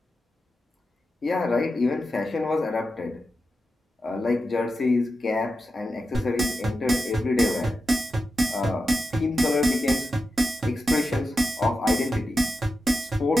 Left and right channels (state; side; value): normal; both; correlation 0.90